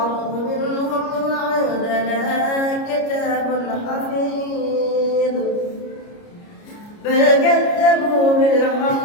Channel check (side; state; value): right; late; 29 ms